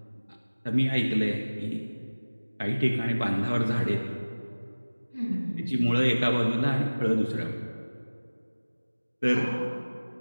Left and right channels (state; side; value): inverted; both; correlation -1.00